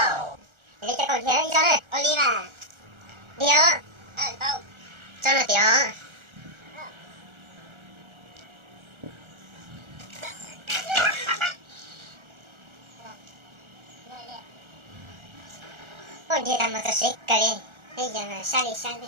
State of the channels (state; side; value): late; left; 1.4 ms